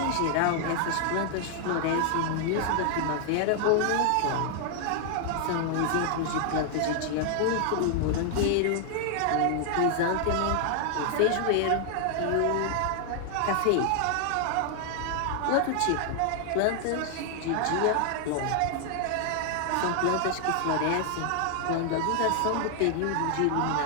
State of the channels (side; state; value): both; different; correlation 0.00